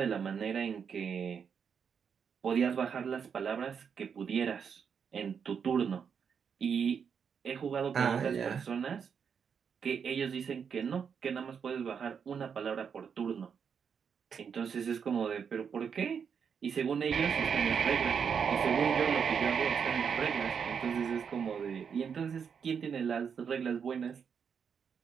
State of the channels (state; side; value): quieter; left; 6.9 dB